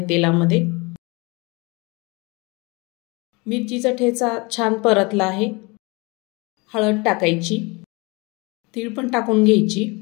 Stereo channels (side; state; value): right; quieter; 26.8 dB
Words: तेलामध्ये। मिरचीचा ठेचा छान परतला आहे। हळद टाकायची, तीळ पण टाकून घ्यायची,